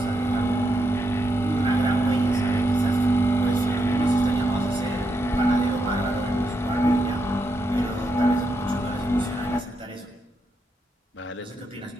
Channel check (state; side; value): normal; both; correlation 0.82